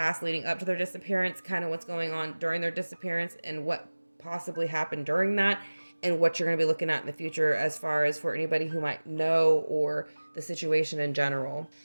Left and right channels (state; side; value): inverted; both; correlation -1.00